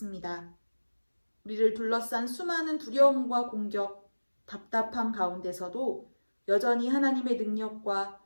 우리를 둘러싼 수많은 두려움과 공격, 답답함 가운데서도 여전히 하나님의 능력과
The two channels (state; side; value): inverted; both; correlation -1.00